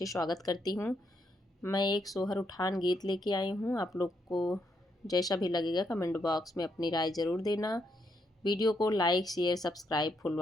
स्वागत करती हूँ। मैं एक सोहर उठान गीत लेके आई हूँ। आप लोग को जैसा भी लगेगा कमेंट बॉक्स में अपनी राय ज़रूर देना। वीडियो को like share subscribe full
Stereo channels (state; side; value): normal; both; correlation 0.78